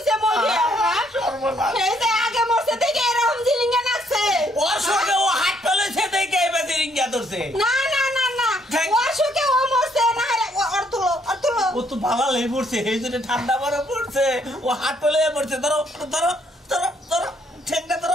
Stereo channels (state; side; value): normal; both; correlation 0.69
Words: বলবি? এই যে আগে মরছে দেখে এরকম জিলিঙ্গা নাচছে। ওর সঙ্গে ও হাত তুলেছে দেখে এবার রিঙ্গা ধরছে। না না না না ওর শোকে ও মরছে না। ওর তুলো ও তো ভালো লেগে পড়ছে, এই জন্য ঠান্ডা বরফ পড়ছে, ও হাত তুলে পড়ছে। ধরো ধরো ধরো ধরো ঠেকটা